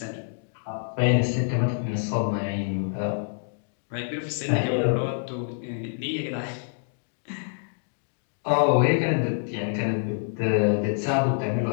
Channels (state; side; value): silent; right; digital silence